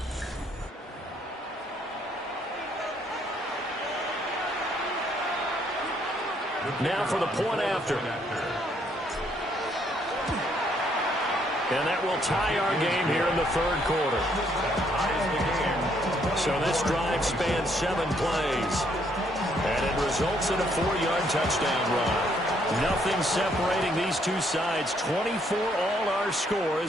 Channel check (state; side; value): normal; both; correlation 0.69